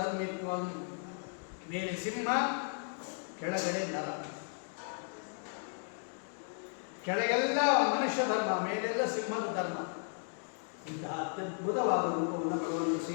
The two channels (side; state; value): right; silent; 54 dB below the other